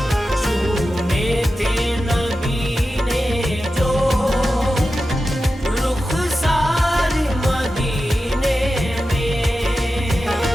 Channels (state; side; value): normal; both; correlation 0.92